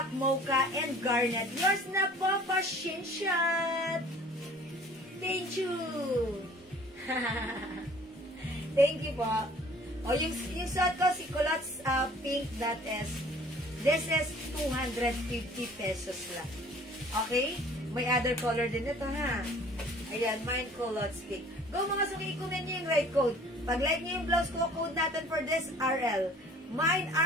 mocha, and garnet. Yours na po, pa-shinshot. Thank you. Thank you po. O, yung suot ko, si culottes pink, this is 250 pesos lang. Okay? May other color din ito, ha? Ayan, mine culottes pink. Go mga suki, ikunin nyo yung right code. Pag like nyo yung blouse ko, code natin for this, RL. Mine,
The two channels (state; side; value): normal; both; correlation 0.51